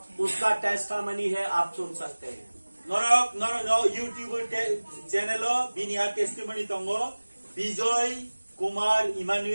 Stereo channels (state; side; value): inverted; both; correlation -1.00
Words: उसका टेस्टामनी है, आप सुन सकते हैं। नरक नर यूट्यूब चैनल बिनिया टेस्टिमनी तंगो विजय कुमार